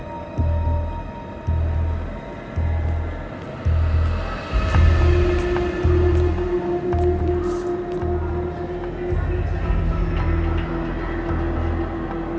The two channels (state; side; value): identical; both; correlation 1.00